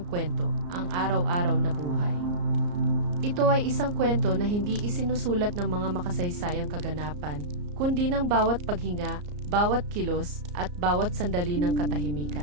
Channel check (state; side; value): late; left; 34 ms